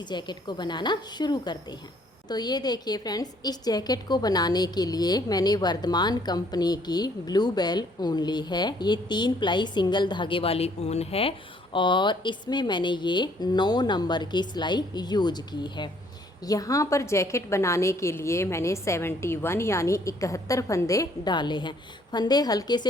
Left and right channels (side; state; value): both; normal; correlation 0.63